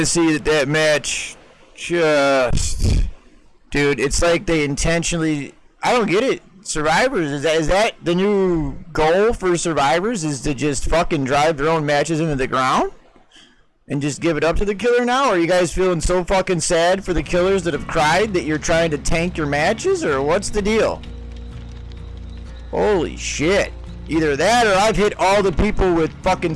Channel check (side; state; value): both; identical; correlation 1.00